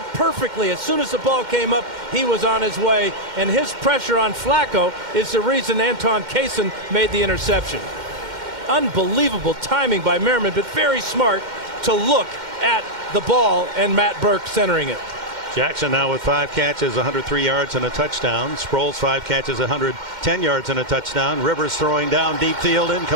perfectly. As soon as the ball came up, he was on his way, and his pressure on Flacco is the reason Anton Quezon made the interception. Unbelievable timing by Merriman, but very smart to look at the ball and Matt Burke centering it. Jackson now with 5 catches, 103 yards and a touchdown. Sproles 5 catches, 110 yards and a touchdown. Rivers throwing down deep field,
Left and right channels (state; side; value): late; left; 2.1 ms